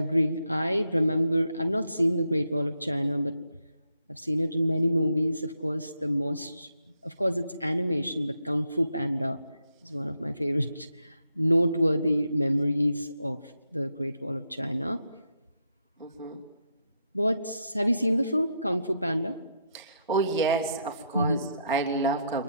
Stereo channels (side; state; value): both; inverted; correlation -0.79